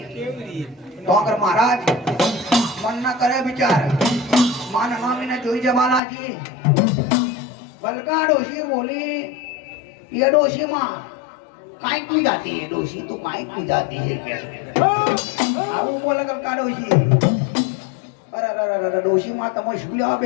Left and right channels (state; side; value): drops out; right; at 6.0 s